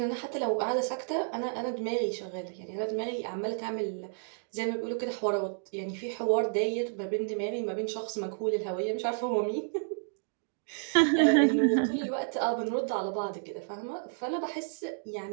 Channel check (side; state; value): left; silent; digital silence